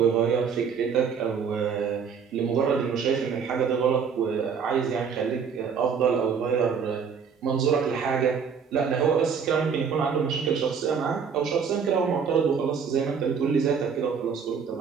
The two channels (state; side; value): quieter; left; 6.4 dB